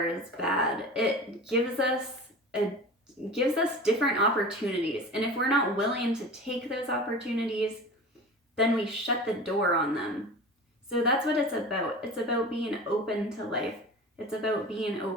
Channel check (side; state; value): both; normal; correlation 0.34